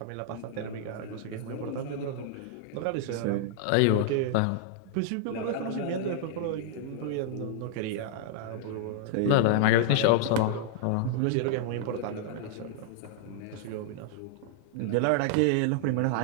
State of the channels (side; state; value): both; different; correlation -0.01